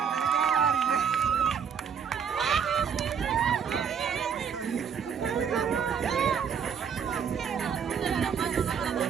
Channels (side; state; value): left; quieter; 7.2 dB